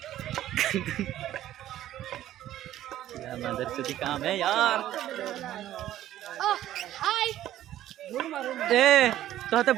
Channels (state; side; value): quieter; left; 13.0 dB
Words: मदर चोदी काम है यार। ए तो